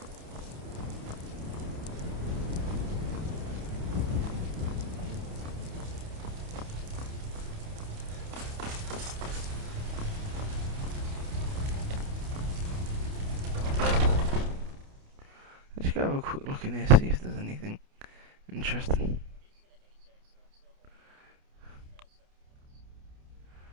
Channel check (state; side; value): late; left; 28 ms